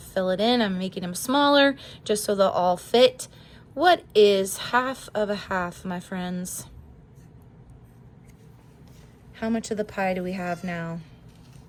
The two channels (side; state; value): both; identical; correlation 1.00